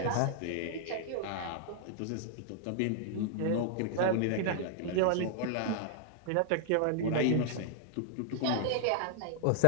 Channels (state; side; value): different; both; correlation -0.01